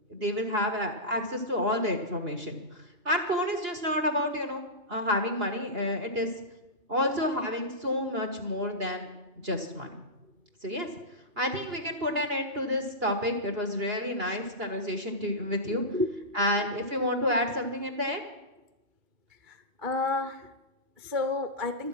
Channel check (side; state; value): left; late; 2.9 ms